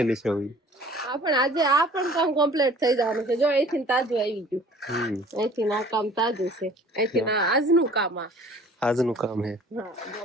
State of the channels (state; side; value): normal; both; correlation 0.50